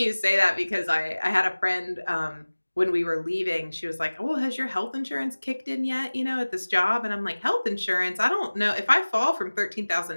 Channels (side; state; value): both; inverted; correlation -1.00